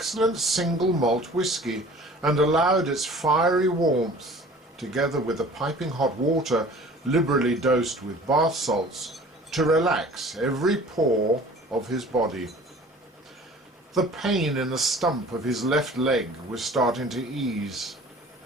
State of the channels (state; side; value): normal; both; correlation 0.46